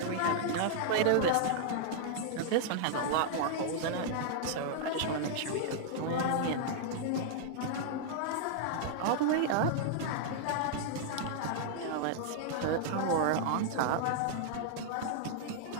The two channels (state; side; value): different; both; correlation -0.01